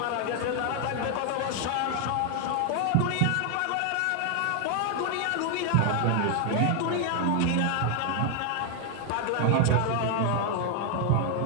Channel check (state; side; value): different; both; correlation 0.00